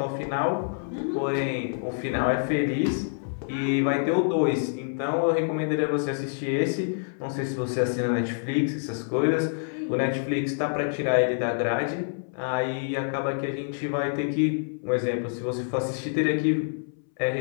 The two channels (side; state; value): right; silent; 60 dB below the other